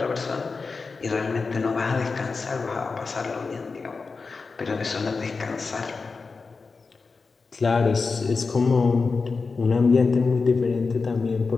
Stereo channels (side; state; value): right; quieter; 4.4 dB